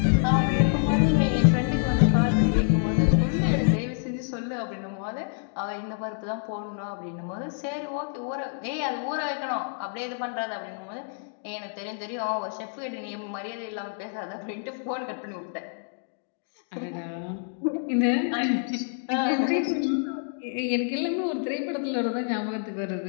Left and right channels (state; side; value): silent; right; 60 dB below the other